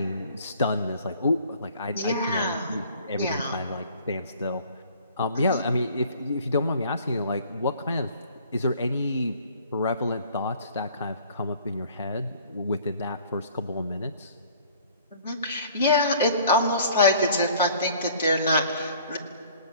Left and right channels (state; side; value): inverted; both; correlation -0.53